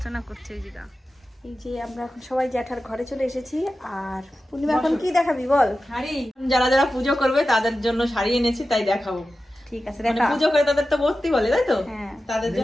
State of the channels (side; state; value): both; normal; correlation 0.94